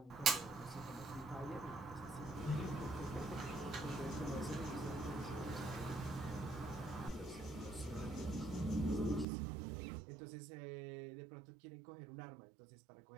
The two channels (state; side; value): drops out; left; at 9.2 s